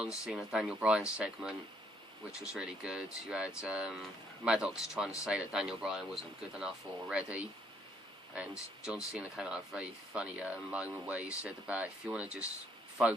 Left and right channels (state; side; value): normal; both; correlation 0.68